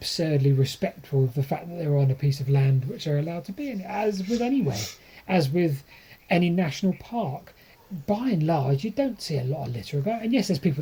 respectful of the fact that they're on a piece of land which they're allowed to be in, as with anywhere, as with any national park. By and large, you don't see a lot of litter about. And yes, there's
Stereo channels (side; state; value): both; identical; correlation 1.00